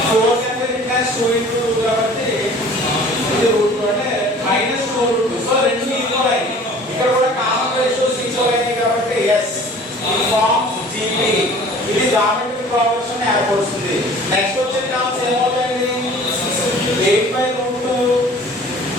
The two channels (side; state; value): both; normal; correlation 0.47